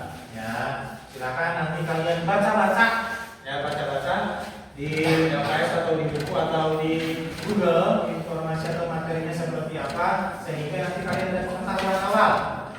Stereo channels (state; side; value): identical; both; correlation 1.00